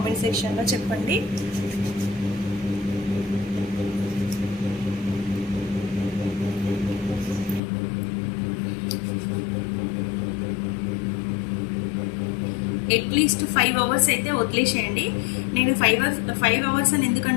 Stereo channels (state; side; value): drops out; right; at 7.6 s